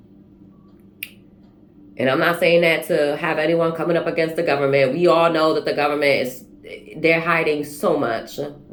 And I'm not saying that to have anyone coming up against the government. We all know that the government is, they're hiding so much.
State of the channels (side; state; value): both; identical; correlation 1.00